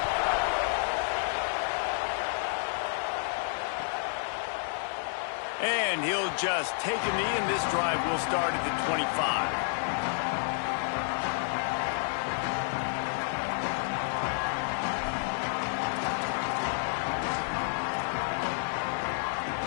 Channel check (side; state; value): right; silent; digital silence